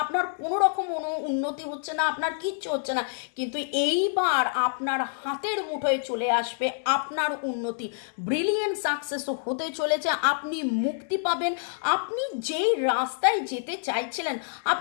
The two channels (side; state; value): right; silent; digital silence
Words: আপনার কোনো রকম উন্নতি হচ্ছে না, আপনার কিচ্ছু হচ্ছে না। কিন্তু এইবার আপনার হাতের মুঠোয় চলে আসবে আপনার উন্নতি, ব্রিলিয়েন্ট সাকসেস হতে চলেছে, আপনি মুক্তি পাবেন। আপনি যেই রাস্তায় যেতে চাইছিলেন